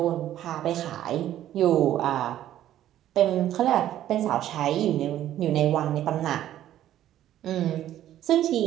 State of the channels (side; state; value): left; quieter; 12.3 dB